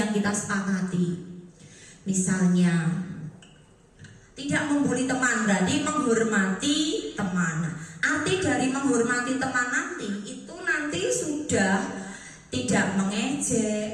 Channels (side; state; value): both; identical; correlation 1.00